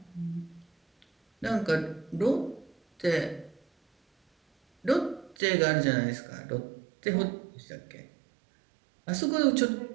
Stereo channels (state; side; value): drops out; left; at 5.4 s